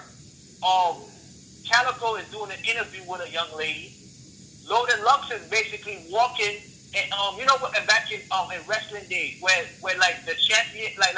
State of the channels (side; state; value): both; identical; correlation 1.00